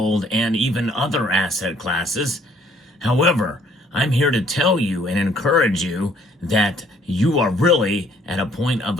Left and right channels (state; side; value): normal; both; correlation 0.62